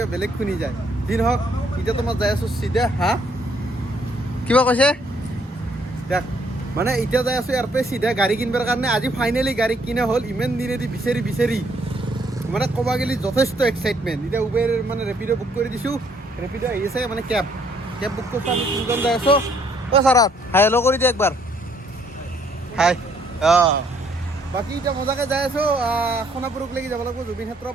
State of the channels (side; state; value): both; normal; correlation 0.67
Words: বেলেগ শুনি যায় যি নহওক এতিয়া তোমাৰ যাই আছোঁ চিধা কিবা কৈছে দেখ মানে এতিয়া যাই আছোঁ ইয়াৰ পৰা চিধা গাড়ী কিনিবৰ কাৰণে আজি ফাইনেলি গাড়ী কিনা হ'ল ইমান দিনেদি বিচাৰি মানে ক'ব গ'লে যথেষ্ট এক্সাইটমেণ্ট এতিয়া উবেৰ মানে ৰেপিড' বুক কৰি দিছোঁ ৰেপিড' আহি আছে মানে কেব বুক কৰিছোঁ আমি তিনিজন যাই আছোঁ ছাৰাত হাই হেল্ল' কৰি দিয়ে একবাৰ হাই বাকী এতিয়া মজাকৈ যাই আছোঁ সোণাপুৰকলৈকে যাব লাগিব জুবিন ক্ষেত্ৰ